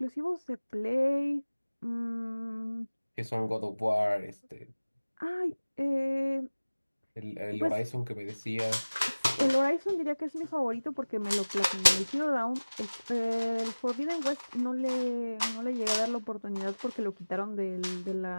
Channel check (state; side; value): inverted; both; correlation -1.00